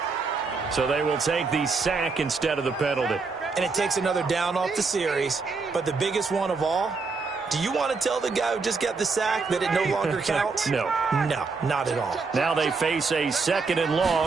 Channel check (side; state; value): left; quieter; 4.4 dB